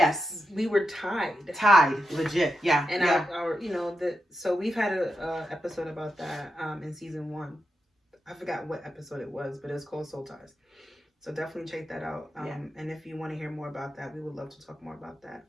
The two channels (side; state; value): both; normal; correlation 0.88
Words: We were tied. Tied, legit, yeah. And our so we've had a episode about that in season 1. I forgot what episode it was, but it was called Soul Ties. So definitely check that out. And if you want to hear more about that, we would love to talk more about that.